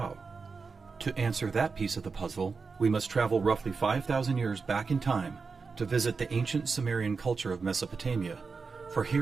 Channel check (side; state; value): left; quieter; 4.8 dB